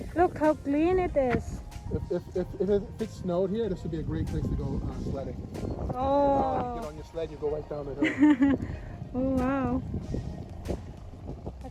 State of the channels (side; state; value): both; identical; correlation 1.00